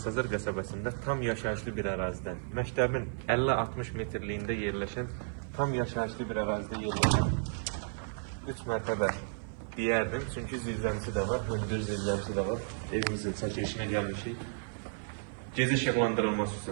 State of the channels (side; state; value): left; silent; 56 dB below the other